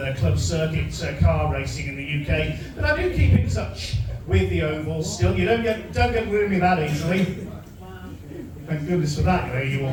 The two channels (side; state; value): both; identical; correlation 1.00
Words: club circuit car racing in the UK. But I do keep in touch with the ovals still. You don't get rid of me that easily. Thank goodness for that, you